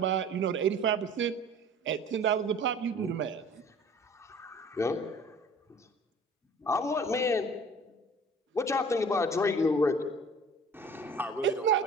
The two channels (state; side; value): normal; both; correlation 0.46